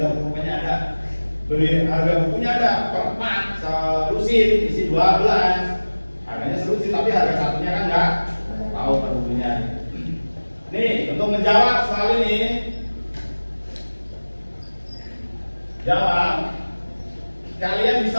bukunya ada. Beli harga bukunya ada per 4 selusin isi 12. Harganya selusin tapi harga satunya kan enggak tahu per bukunya. Nih, untuk menjawab soal ini, jawab. Kalian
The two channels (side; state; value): both; inverted; correlation -1.00